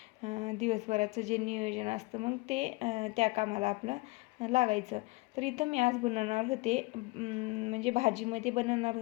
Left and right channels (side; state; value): right; quieter; 24.0 dB